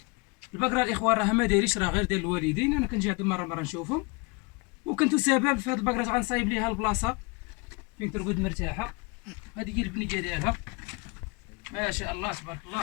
البقره الاخوان راها ما دايريش، راه غير ديال الوالدين. انا كنجي عند مره نشوفهم، وكنت سبب في هاد البقره غنصايب ليها البلاصه فين ترقد مرتاحه. هذه هي البنيه ديالها ما شاء الله تبارك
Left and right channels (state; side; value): quieter; right; 28.9 dB